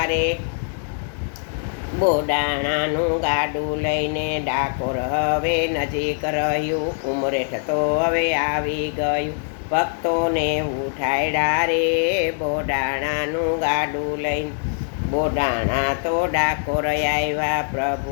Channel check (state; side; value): silent; right; digital silence